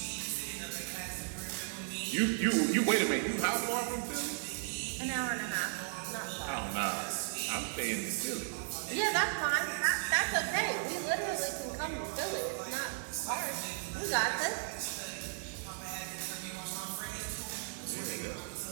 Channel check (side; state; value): left; silent; digital silence